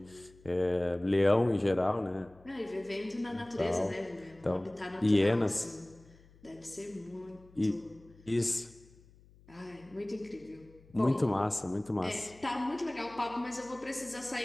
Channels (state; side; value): noise; left; hum, 26 dB below the sound